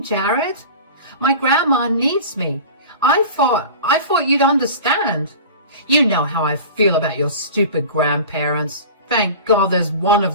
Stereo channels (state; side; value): inverted; both; correlation -0.37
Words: Jared? My grandma needs me. I thought you'd understand. You know how I feel about your stupid grandparents. Thank God there's one